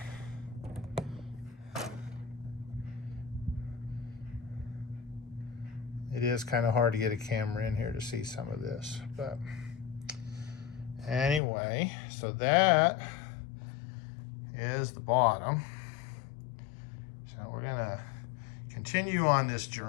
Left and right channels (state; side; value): drops out; right; at 11.4 s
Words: It is kind of hard to get a camera in here to see some of this, but anyway, so that is the bottom. So we're gonna continue on this